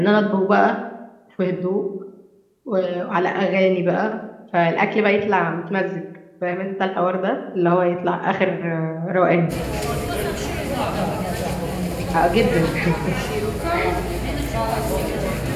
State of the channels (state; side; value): identical; both; correlation 1.00